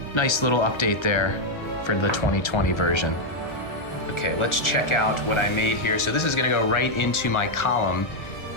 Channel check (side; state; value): right; late; 1.4 ms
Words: nice little update there for the 2020 version. Okay, let's check out what I made here. So this is gonna go right into my column.